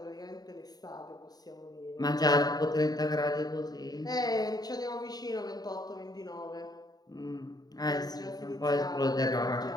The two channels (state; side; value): late; right; 0.19 ms